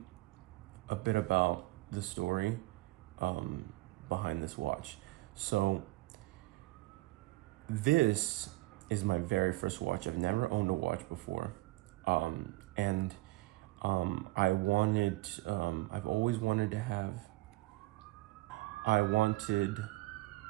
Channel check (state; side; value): quieter; left; 20.3 dB